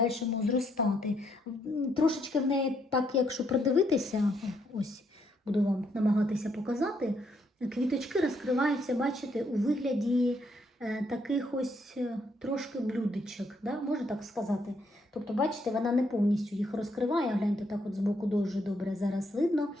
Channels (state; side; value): normal; both; correlation 0.73